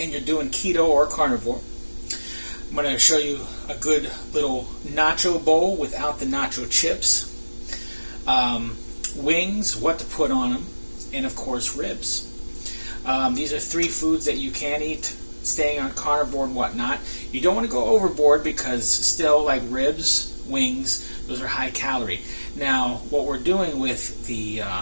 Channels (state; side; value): inverted; both; correlation -1.00